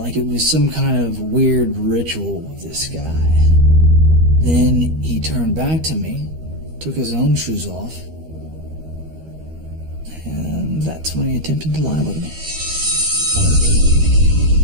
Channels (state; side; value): late; left; 13 ms